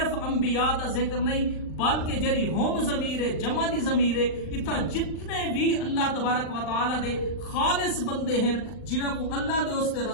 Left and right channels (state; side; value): late; right; 39 ms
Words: انبیاء دا ذکر نہیں بلکہ جری ہوم ضمیر ہے، جمع دی ضمیر ہے، اتھا جتنے بھی اللہ تبارک و تعالی دے خالص بندے ہیں جنہاں کو اللہ دے اس دے